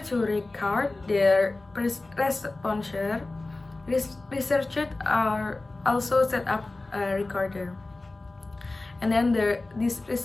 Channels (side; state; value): right; quieter; 3.1 dB